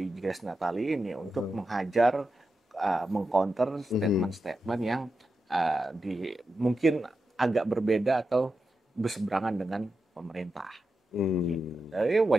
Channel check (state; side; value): normal; both; correlation 0.89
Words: Grace Natali ini untuk menghajar, mengcounter statement-statement yang mungkin agak berbeda atau berseberangan dengan pemerintah. Gitu. Jadi